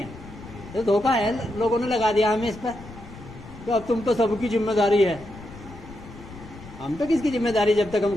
تو دھوکہ ہے, لوگوں نے لگا دیا ہمیں اس پر کہ اب تم تو سب کی ذمہ داری ہے. ہم تو کس کی ذمہ داری جب تک ہم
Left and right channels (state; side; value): noise; left; rumble, 16 dB below the sound